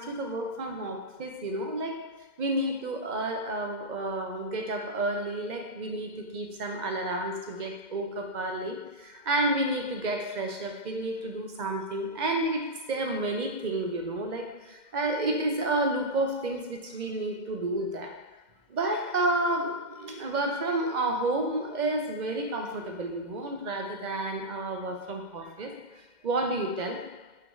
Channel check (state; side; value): late; left; 2.1 ms